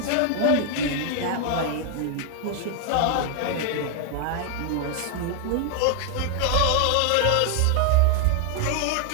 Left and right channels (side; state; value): both; different; correlation 0.00